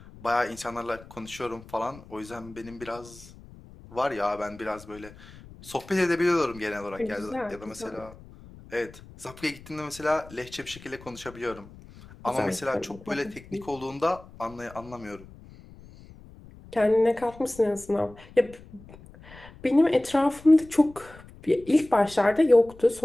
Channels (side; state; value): left; noise; rumble, 20 dB below the sound